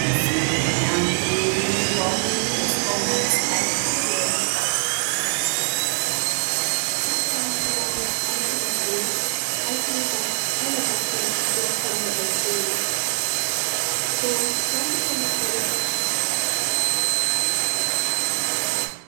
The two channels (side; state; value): left; silent; digital silence